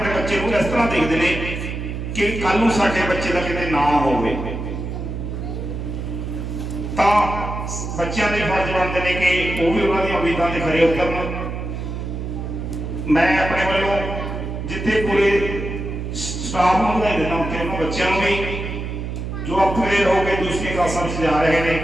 ਬੱਚੇ ਨੂੰ ਇਸ ਤਰ੍ਹਾਂ ਦੇਖਦੇ ਨੇ ਕਿ ਕੱਲ ਨੂੰ ਸਾਡੇ ਬੱਚੇ ਦਾ ਕਿਤੇ ਨਾ ਹੋਵੇ। ਤਾਂ ਬੱਚਿਆਂ ਦੇ ਫਰਜ਼ ਬਣਦੇ ਨੇ ਕਿ ਉਹ ਵੀ ਉਹਨਾਂ ਦੀਆਂ ਉਮੀਦਾਂ ਤੇ ਖਰੇ ਉਤਰਨ। ਮੈਂ ਆਪਣੇ ਵੱਲੋਂ ਜਿੱਥੇ ਪੂਰੇ ਸਟਾਫ ਨੂੰ ਵਧਾਈ ਦਿੰਦਾ ਕਿ ਉਹਨਾਂ ਬੱਚਿਆਂ ਨੂੰ ਵੀ ਜੋ ਅਪਗ੍ਰੇਡ ਹੋ ਕੇ ਦੂਸਰੀ ਕਲਾਸਾਂ ਵਿੱਚ ਜਾ ਰਹੇ ਨੇ,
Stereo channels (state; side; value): noise; right; hum, 5 dB below the sound